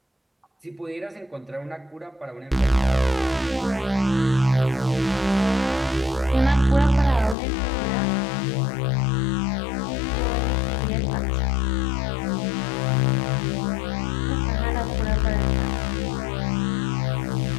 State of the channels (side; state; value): right; drops out; at 7.4 s